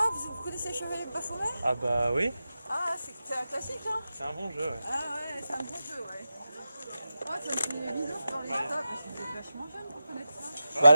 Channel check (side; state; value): both; inverted; correlation -0.92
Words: vous connaissez Chevalier de Baphomet? Ah bah oui, Ah, c'est un classique, hein? c'est un bon jeu, ouais. Ah ouais, c'est un bon jeu, ouais. Ouais, ça me fait bizarre dans les stocks parce que vous êtes vachement jeune pour connaître ça. Bah